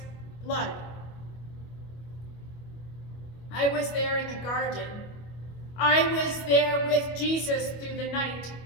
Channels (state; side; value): late; right; 25 ms